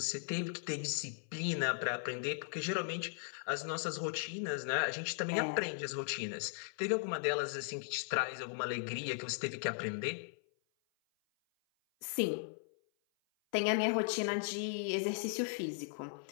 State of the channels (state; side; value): silent; right; 53 dB below the other